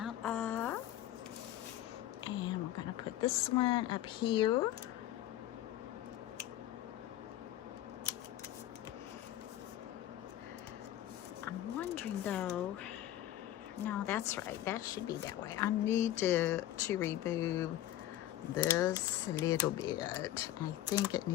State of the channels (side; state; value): right; quieter; 13.2 dB